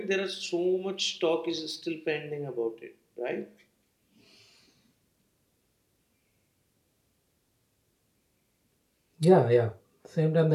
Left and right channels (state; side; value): identical; both; correlation 1.00